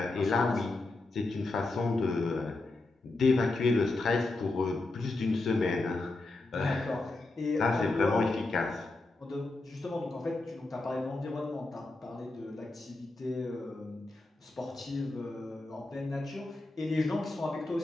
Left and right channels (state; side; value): quieter; right; 3.1 dB